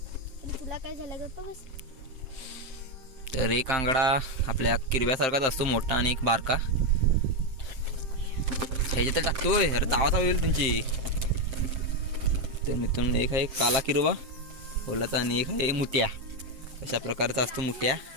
तुला काय झालं गप्पा बस. तर एक आंगडा आपल्या किरव्यासारखाच असतो, मोठा आणि एक बारका. ह्याच्यात टाकतोय. अरे चावा होईल तुमची. तर मित्रांनो एक आहे काला किरवा ओलाचा आणि एक आहे मुठ्या. अशा प्रकारचा असतो मुठ्या.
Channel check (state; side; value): late; left; 7.5 ms